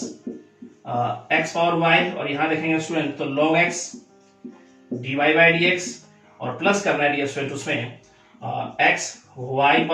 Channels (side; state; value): both; identical; correlation 1.00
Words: x power y, और यहाँ देखेंगे स्टूडेंट तो log x dy by dx, और प्लस करना है डियर स्टूडेंट उसमें x y